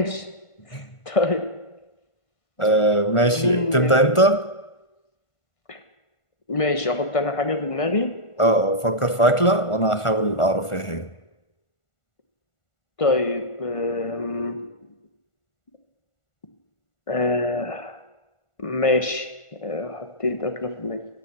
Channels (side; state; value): right; late; 1.4 ms